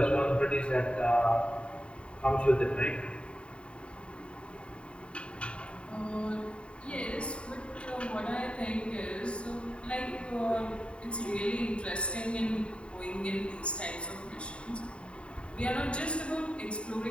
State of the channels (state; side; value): late; right; 0.057 ms